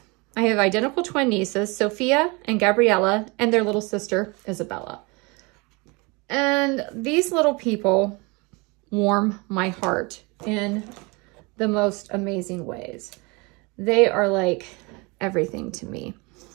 I have identical twin nieces, Sophia and Gabriella, and their little sister, Isabella. And these little people warm my heart in the most amazing ways. They are like everything to me.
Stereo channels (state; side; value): quieter; left; 27.6 dB